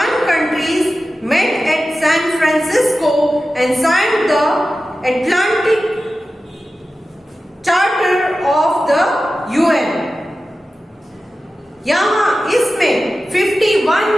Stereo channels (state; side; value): normal; both; correlation 0.94